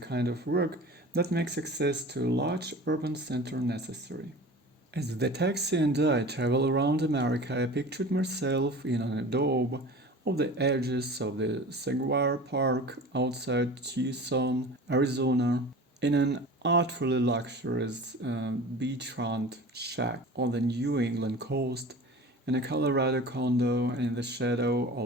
of work that makes access to a large urban center necessary. As the taxi and I travel around America, I pictured myself in an adobe of the edges of the Saguaro Park outside Tucson, Arizona, in an artfully luxurious beachfront shack on the New England coast, in a Colorado condo in the shadow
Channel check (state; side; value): normal; both; correlation 0.38